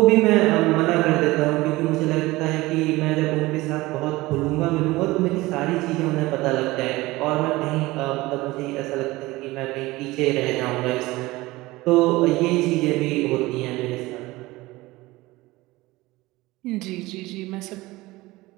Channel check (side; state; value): left; quieter; 19.8 dB